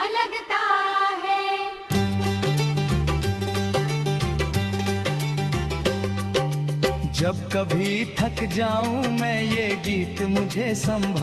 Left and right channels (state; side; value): identical; both; correlation 1.00